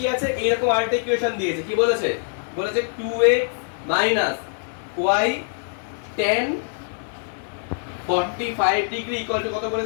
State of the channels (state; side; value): silent; right; digital silence